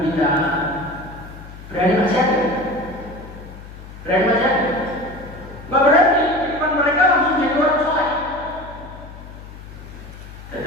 kita, berani maksiat? Berani maksiat? Nggak berani. Di depan mereka langsung jadi orang soleh.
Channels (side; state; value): left; noise; hum, 15 dB below the sound